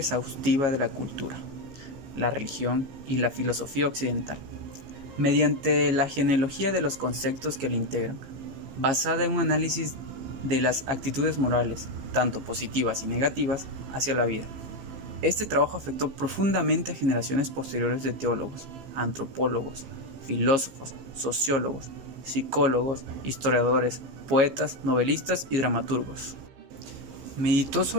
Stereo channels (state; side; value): late; left; 15 ms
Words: de la cultura, la religión y la filosofía occidental, mediante la genealogía de los conceptos que la integran, basada en un análisis de las actitudes morales, tanto positivas y negativas, hacia la vida. Este trabajo afectó profundamente a generaciones posteriores de teólogos, antropólogos, filósofos, sociólogos, psicólogos, historiadores, poetas, novelistas y dramaturgos. Meditó